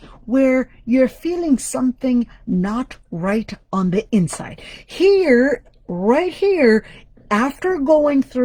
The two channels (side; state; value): both; identical; correlation 1.00